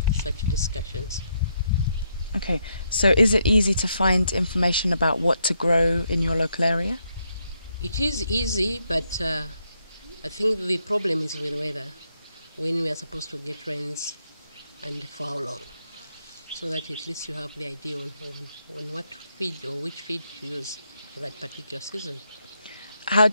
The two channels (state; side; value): inverted; both; correlation -0.78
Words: such discussions. Okay. So is it easy to find information about what to grow in your local area? It is easy, but I think the problem is with weather, when we are supposed to get rains and for how long, so that at least you have the idea on what feed or which feed to use for that particular season. How